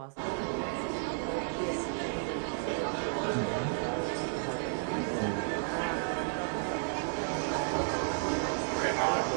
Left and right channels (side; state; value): left; silent; digital silence